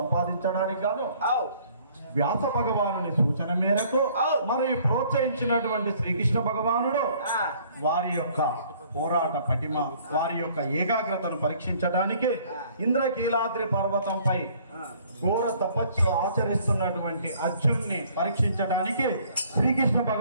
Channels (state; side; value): inverted; both; correlation -0.59